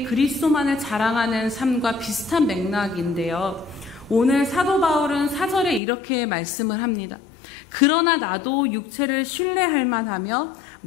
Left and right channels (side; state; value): right; drops out; at 5.8 s